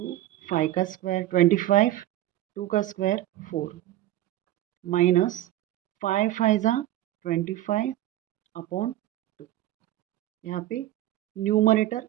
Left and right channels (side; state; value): left; quieter; 14.6 dB